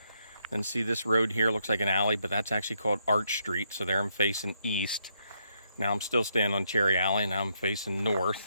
And see this road here, looks like an alley, but that's actually called Arch Street. So there I'm facing east. Now I'm still standing on Cherry Alley, now I'm facing north.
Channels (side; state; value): both; inverted; correlation -0.77